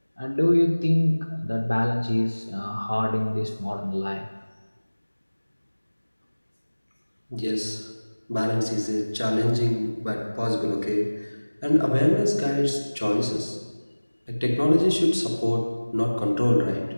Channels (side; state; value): both; inverted; correlation -1.00